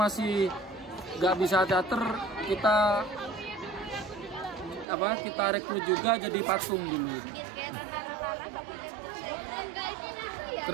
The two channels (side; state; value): left; drops out; at 4.9 s